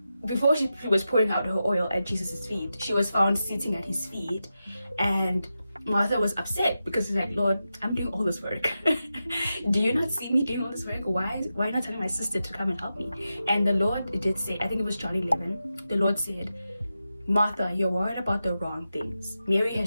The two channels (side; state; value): both; inverted; correlation -0.90